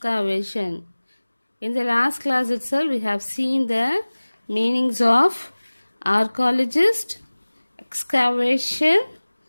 In the last class itself, we have seen the meanings of archaeologist, excavation,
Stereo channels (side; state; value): both; inverted; correlation -1.00